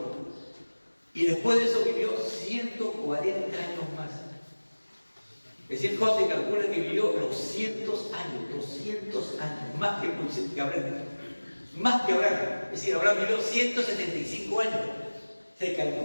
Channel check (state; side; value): inverted; both; correlation -1.00